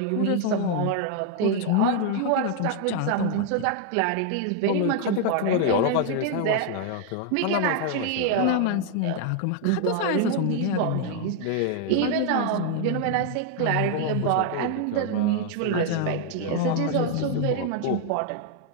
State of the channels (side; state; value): both; different; correlation 0.00